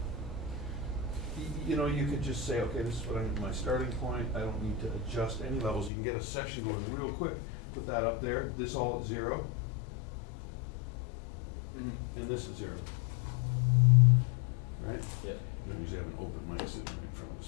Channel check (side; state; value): right; drops out; at 5.9 s